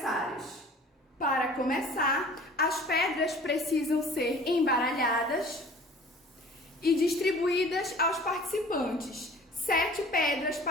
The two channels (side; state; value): both; normal; correlation 0.47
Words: Para começar, as pedras precisam ser embaralhadas e distribuídas aos participantes, 7 pedras